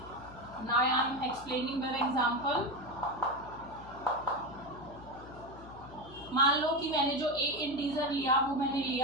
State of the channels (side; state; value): left; noise; hum, 17 dB below the sound